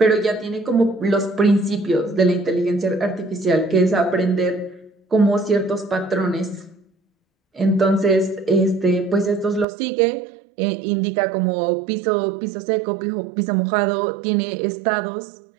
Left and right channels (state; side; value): drops out; left; at 9.7 s